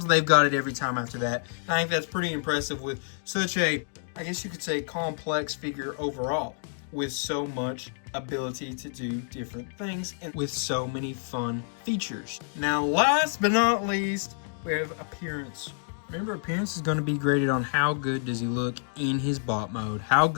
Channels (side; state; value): right; silent; digital silence